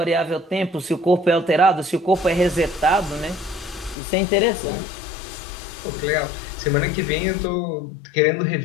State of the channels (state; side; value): drops out; right; at 4.0 s